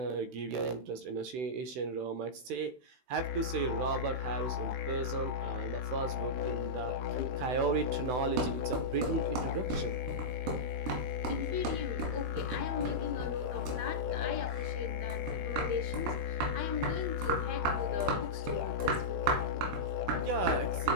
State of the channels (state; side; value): late; left; 16 ms